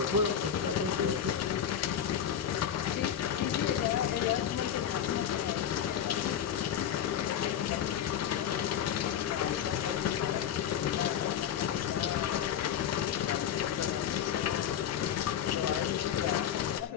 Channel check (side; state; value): right; quieter; 9.3 dB